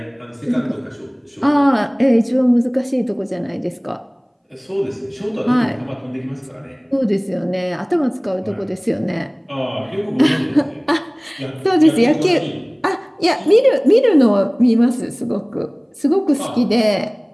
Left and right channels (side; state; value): both; identical; correlation 1.00